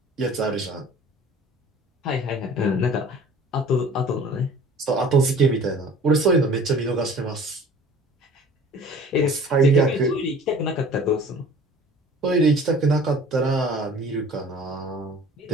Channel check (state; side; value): normal; both; correlation 0.46